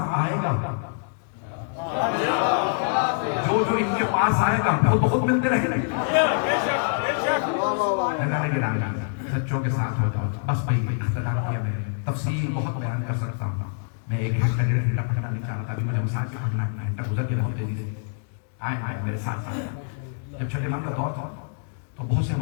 آئے گا، جو ان کے پاس آئے گا وہ بہت ملتے رہے گا. سچوں کے ساتھ ہو جاؤ. بس بھائی اختلاف ہے، تفصیل بہت بیان کر سکتا ہوں میں 1 گھنٹہ 1.5 گھنٹہ پڑھنا نہیں چاہ رہا تھا، ابھی مجھے مسائل سے پڑھنا گھنٹہ گزر گیا بہت تیزی سے. آئے میرے ساتھ. جب چھٹے امام کا دور تھا تو بہت سے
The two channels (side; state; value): right; silent; digital silence